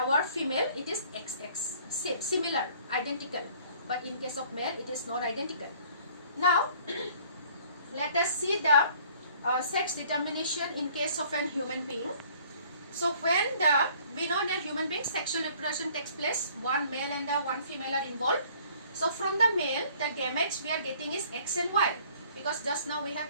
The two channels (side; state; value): both; inverted; correlation -0.56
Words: female, it is XX, same, similar, identical. But in case of male, it is not identical. Now, let us see the sex determination in case of an human being. So when we know that human being sexual reproduction takes place, one male and one female are involved. So from the male, the gametes we are getting is X and Y, because just now we have